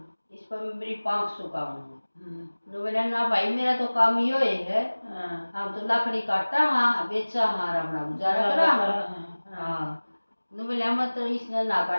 इस पर मेरी 500 काम हूँ। ने बोला ना भाई मेरा तो काम यो है, हम तो लकड़ी काटा हाँ बेचा हाँ अपना गुजारा करा हाँ। ने बोला मत इसने ना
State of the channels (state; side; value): inverted; both; correlation -1.00